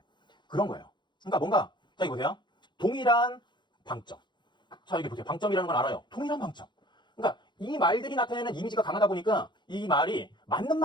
그런 거예요. 그러니까 뭔가 자 여기 보세요. 동일한 방점. 자 여기 보세요. 방점이라는 걸 알아요. 동일한 방점. 그러니까 이 말들이 나타내는 이미지가 강하다 보니까 이 말이 맞는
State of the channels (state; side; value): late; right; 0.22 ms